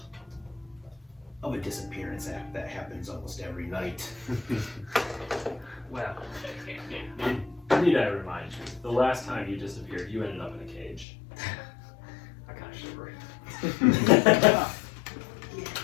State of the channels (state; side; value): drops out; right; at 11.1 s